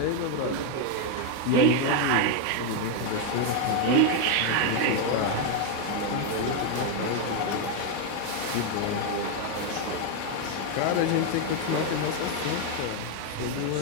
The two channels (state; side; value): different; both; correlation 0.01